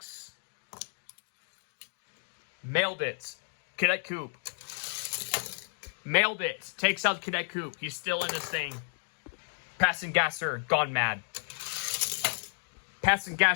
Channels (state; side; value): silent; right; digital silence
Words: Mailed It, Cadet Coupe. Mailed It takes out Cadet Coupe. He's still in this thing. Passing Gasser, Gone Mad. Passing